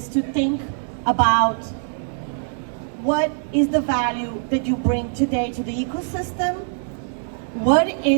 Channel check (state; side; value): silent; left; digital silence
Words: to think about what is the value that you bring today to the ecosystem? What